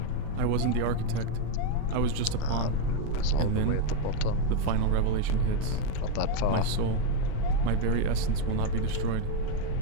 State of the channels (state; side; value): different; both; correlation 0.02